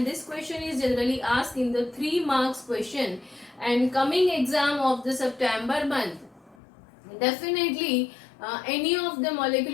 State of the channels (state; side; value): drops out; right; at 6.6 s